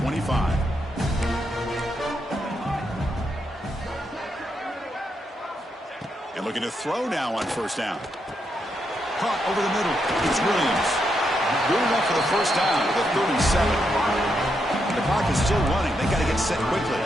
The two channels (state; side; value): normal; both; correlation 0.81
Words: And looking to throw now on first down. Caught over the middle. It's Williams. Good enough for the first down to the 37. The clock is still running. They got to get set quickly.